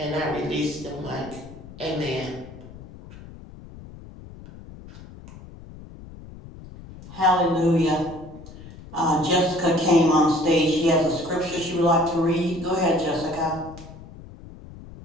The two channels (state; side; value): noise; left; rumble, 17 dB below the sound